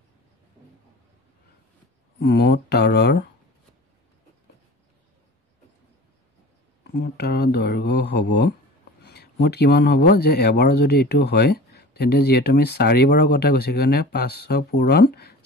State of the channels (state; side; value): normal; both; correlation 0.39